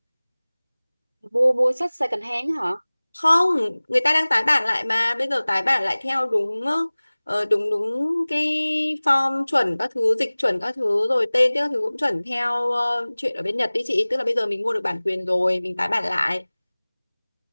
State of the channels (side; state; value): both; inverted; correlation -1.00